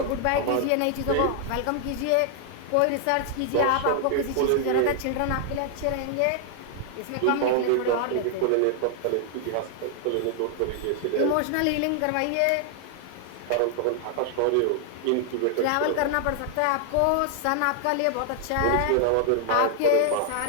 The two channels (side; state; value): both; different; correlation 0.00